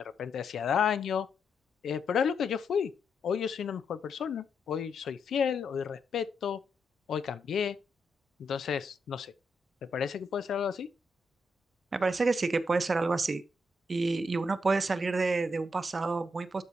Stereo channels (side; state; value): both; normal; correlation 0.80